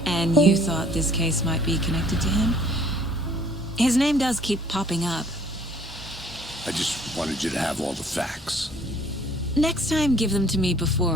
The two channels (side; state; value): both; normal; correlation 0.57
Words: And you thought this case might be connected to him? His name does keep popping up. I just wanted you to have all the facts. Next time, give them to me